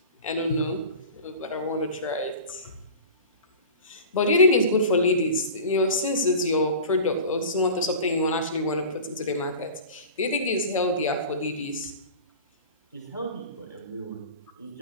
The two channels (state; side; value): inverted; both; correlation -0.36